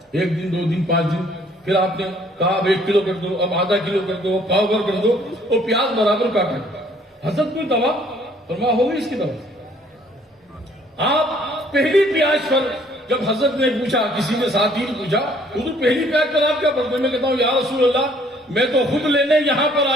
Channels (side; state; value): both; normal; correlation 0.61